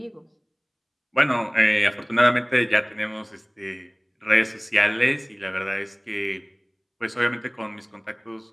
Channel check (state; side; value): identical; both; correlation 1.00